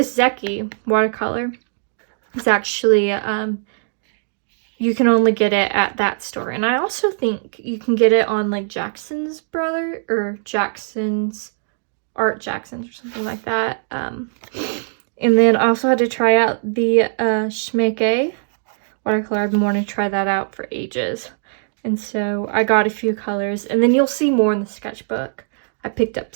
Zecchi watercolor is actually, you can only get it at that store. And I also think you can get it on like Jackson's or Jackson's or something like that. And then I also had to try out the Schmecke watercolor. I've been wanting to try that out for ages. And so I got a few colors. And then you'll see more in the sketchbook. I picked up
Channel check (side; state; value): left; silent; digital silence